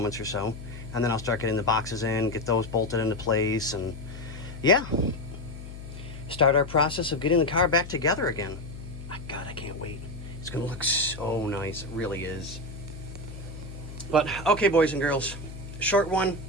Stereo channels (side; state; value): left; noise; hum, 12 dB below the sound